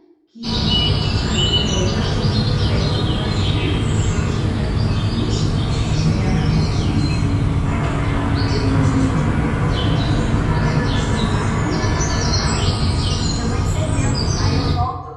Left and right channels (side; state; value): both; identical; correlation 1.00